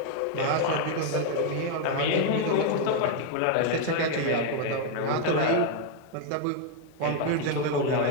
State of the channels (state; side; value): different; both; correlation 0.01